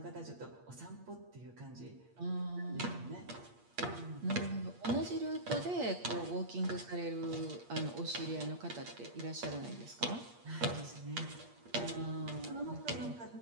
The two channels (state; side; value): late; left; 8.5 ms